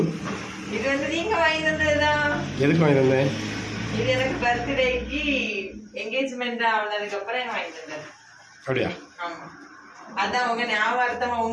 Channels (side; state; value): both; identical; correlation 1.00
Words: இது நீங்க வாங்கி தந்ததுதான். எதுக்கு வாங்கி தந்தேன்? இது எனக்கு பர்த்டேக்கு என்கேஜ்மெண்ட் ஆனதுக்கு அப்புறம் எனக்கு வாங்கி தந்தது. அப்படியா? ஆமா. அதான் உங்க ஞாபகத்தமா